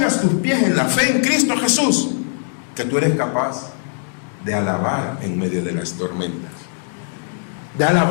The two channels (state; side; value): silent; right; 63 dB below the other